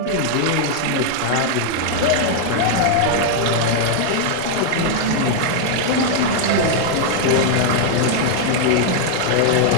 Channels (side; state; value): both; different; correlation 0.00